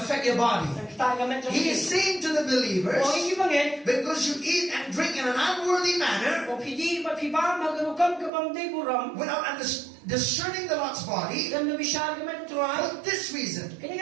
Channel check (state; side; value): drops out; left; at 8.3 s